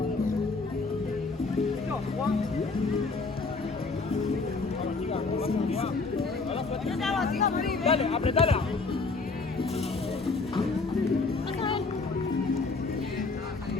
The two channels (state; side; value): quieter; right; 4.0 dB